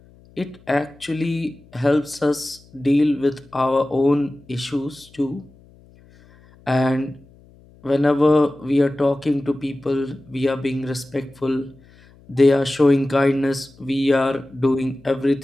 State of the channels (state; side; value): noise; left; hum, 27 dB below the sound